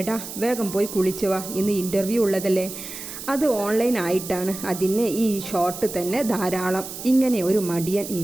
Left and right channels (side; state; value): right; noise; hiss, 10 dB below the sound